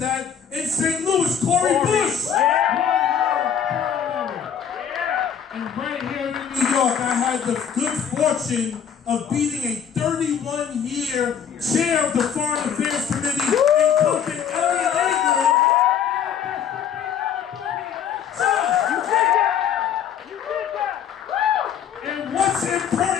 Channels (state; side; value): quieter; right; 8.2 dB